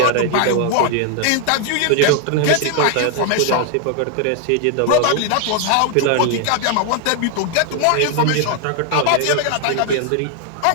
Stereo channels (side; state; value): both; different; correlation 0.00